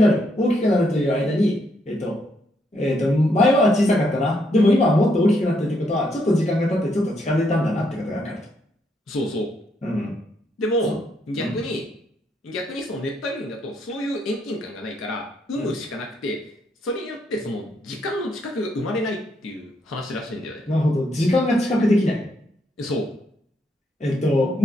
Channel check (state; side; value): normal; both; correlation 0.75